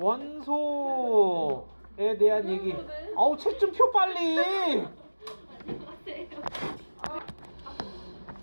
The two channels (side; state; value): both; inverted; correlation -1.00